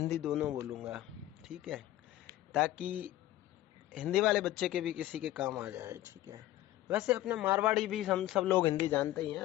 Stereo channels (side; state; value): right; quieter; 14.7 dB